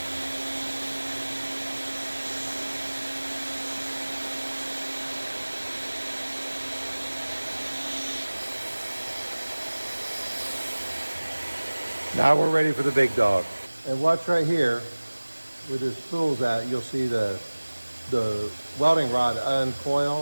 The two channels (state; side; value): inverted; both; correlation -1.00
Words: Now we're ready for the big dog. And watch right here, where this spool's at, you'll see the welding rod